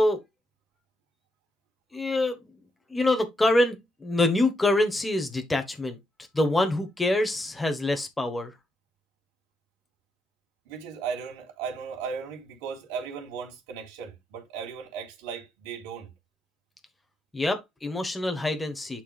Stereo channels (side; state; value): both; normal; correlation 0.81